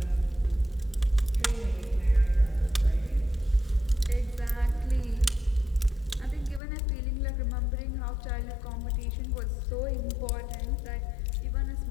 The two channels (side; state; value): right; drops out; at 6.6 s